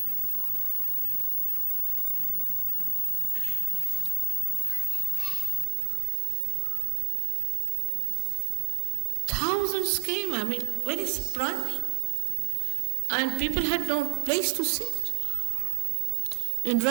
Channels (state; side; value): drops out; left; at 5.7 s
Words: thousands came, very surprising. And people had no place to sit. In